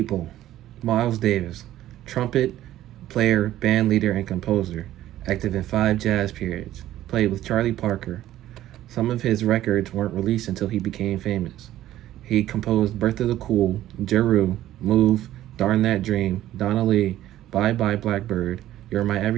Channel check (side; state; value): left; quieter; 13.5 dB